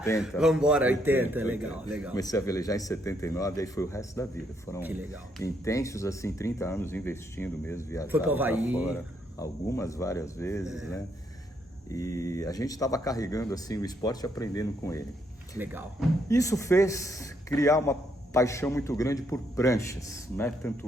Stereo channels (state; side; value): normal; both; correlation 0.74